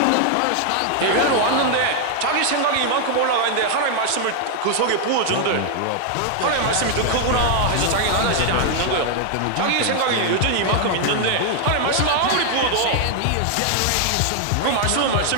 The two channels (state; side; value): different; both; correlation 0.00